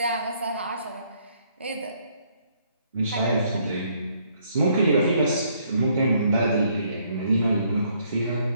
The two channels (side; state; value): both; inverted; correlation -0.68